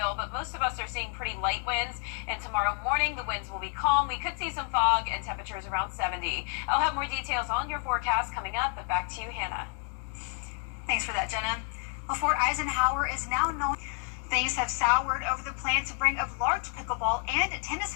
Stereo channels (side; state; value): right; quieter; 37.9 dB